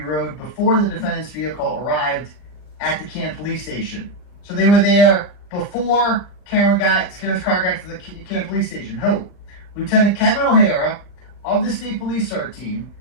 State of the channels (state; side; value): late; right; 40 ms